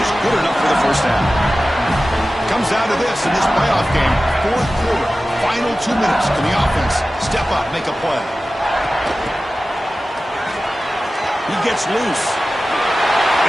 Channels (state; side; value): normal; both; correlation 0.95